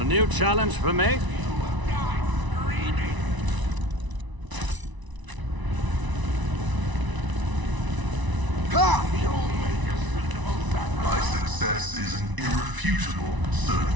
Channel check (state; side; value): late; left; 1.0 ms